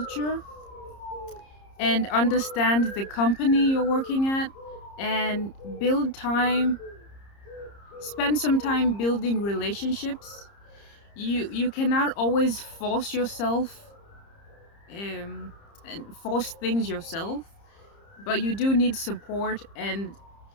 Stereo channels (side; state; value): right; late; 30 ms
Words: and understand the company you're working at, and build time, spend some time building relationships. You cannot always force yourself, um, and force things yourself, but you do need support. And